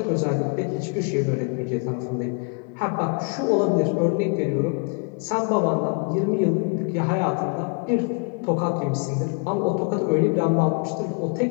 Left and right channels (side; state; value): right; quieter; 34.9 dB